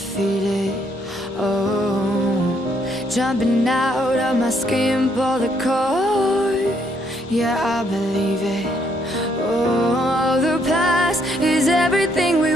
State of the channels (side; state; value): both; normal; correlation 0.71